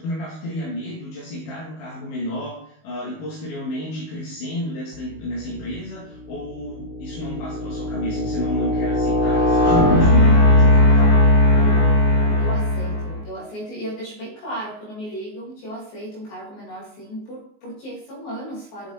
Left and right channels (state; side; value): late; right; 19 ms